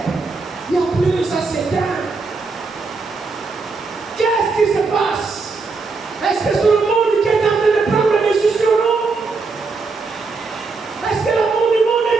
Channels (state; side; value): quieter; left; 4.2 dB